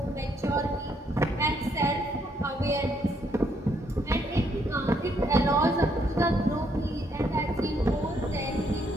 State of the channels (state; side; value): normal; both; correlation 0.72